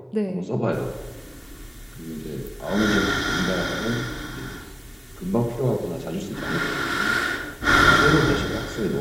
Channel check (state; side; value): identical; both; correlation 1.00